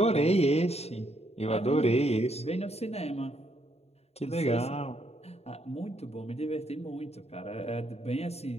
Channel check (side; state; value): right; late; 0.30 ms